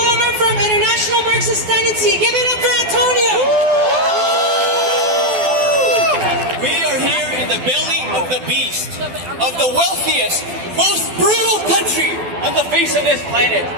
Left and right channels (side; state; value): left; late; 12 ms